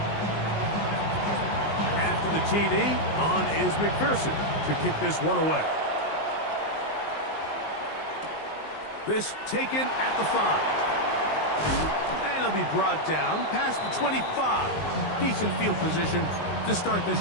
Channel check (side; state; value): right; late; 19 ms